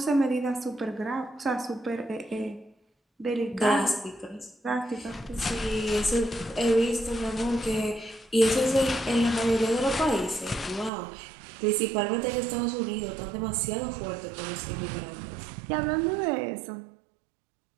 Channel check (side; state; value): left; drops out; at 10.9 s